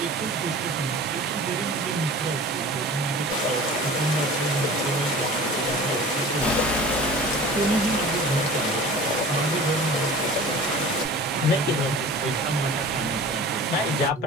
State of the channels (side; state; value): both; normal; correlation 0.40